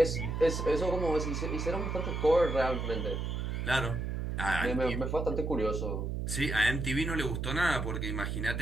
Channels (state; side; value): noise; right; hum, 2 dB below the sound